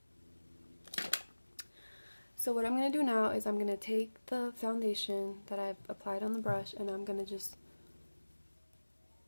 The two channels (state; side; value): inverted; both; correlation -1.00